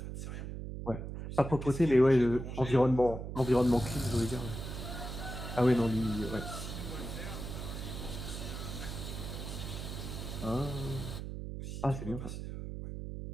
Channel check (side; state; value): right; noise; hum, 7 dB below the sound